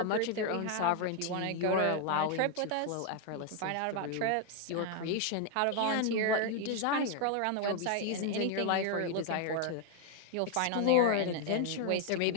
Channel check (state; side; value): different; both; correlation 0.00